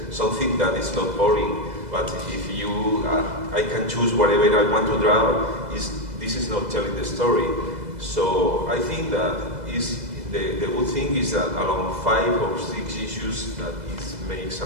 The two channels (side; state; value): left; late; 2.0 ms